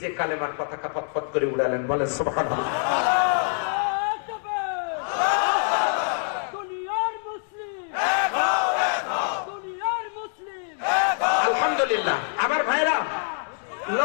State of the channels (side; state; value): right; silent; 62 dB below the other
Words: কালেমার পতাকা পতপত করে উড়ালেন, বলেন সুবহানাল্লাহ। আলহামদুলিল্লাহ। আমার ভাইরা